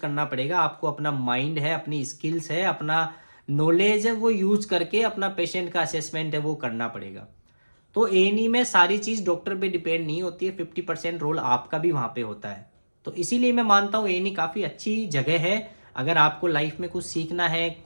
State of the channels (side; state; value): both; inverted; correlation -1.00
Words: पड़ेगा। आपको अपना माइंड है, अपनी स्किल्स है, अपना नॉलेज है, वो यूज़ करके अपना पेशेंट का असेसमेंट है वो करना पड़ेगा। तो ए में सारी चीज़ डॉक्टर पे डिपेंड नहीं होती है, 50% रोल आपका भी वहाँ पे होता है। तो इसीलिए मैं मानता हूँ ए काफ़ी अच्छी जगह है। अगर आपको लाइफ में कुछ सीखना है,